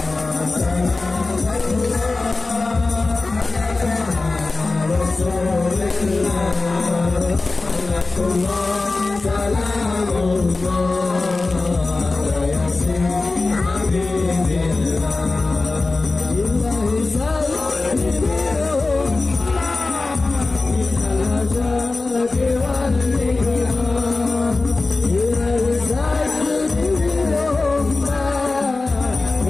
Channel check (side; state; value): right; quieter; 3.5 dB